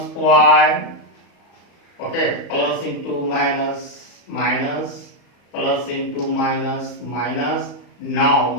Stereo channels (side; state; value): right; late; 34 ms